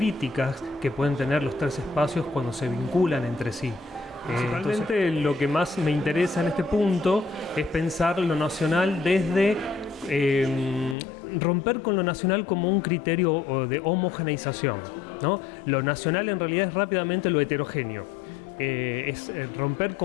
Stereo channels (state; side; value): drops out; right; at 11.0 s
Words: que pueden tener los tres espacios cuando se vinculan entre sí. Principalmente lo que más me interesa en este punto es pensar lo nacional desde romper con lo nacional como un criterio de homogeneización, ¿no? Lo nacional en realidad es rápidamente lo heterogéneo. Es romper